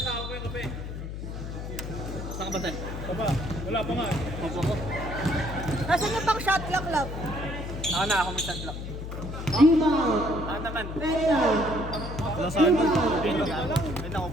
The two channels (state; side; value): noise; left; hum, 7 dB below the sound